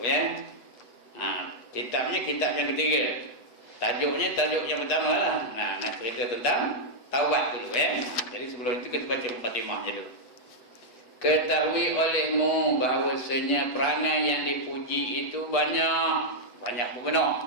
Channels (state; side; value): late; right; 8.0 ms